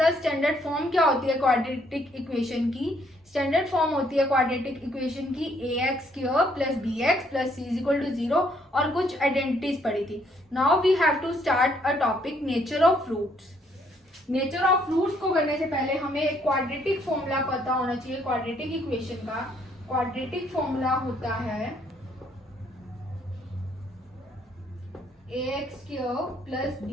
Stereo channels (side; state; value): both; normal; correlation 0.68